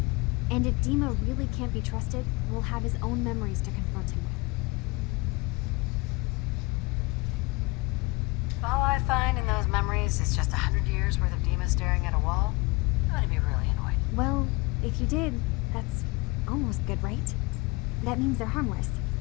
And if Dima really can't be trusted, we'll have his own memories to confront him with. If all I find in those memories is just 100 years worth of Dima staring at a wall, I'm gonna be really annoyed. Well, if you did, that's almost good, right? That means they're harmless.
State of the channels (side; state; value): right; quieter; 25.2 dB